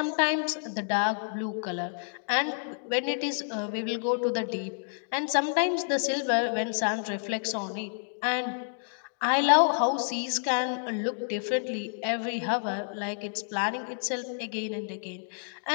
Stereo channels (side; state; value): right; silent; digital silence